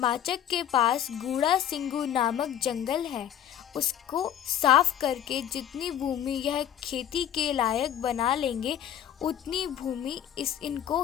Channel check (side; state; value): right; quieter; 10.4 dB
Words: के पास गूढ़ा सिंगू नामक जंगल है, उसको साफ करके जितनी भूमि यह खेती के लायक बना लेंगे उतनी भूमि इनको